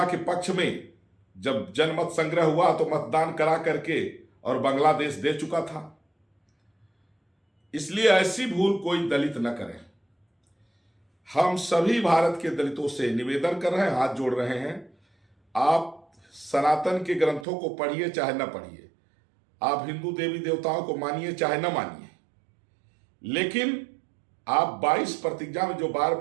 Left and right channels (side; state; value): left; drops out; at 17.4 s